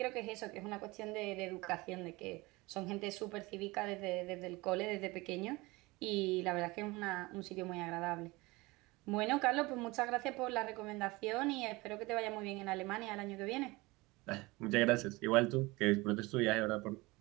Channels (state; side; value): quieter; left; 22.7 dB